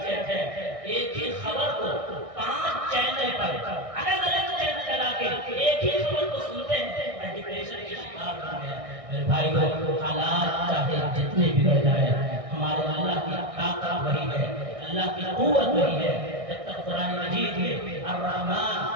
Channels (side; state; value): left; late; 1.6 ms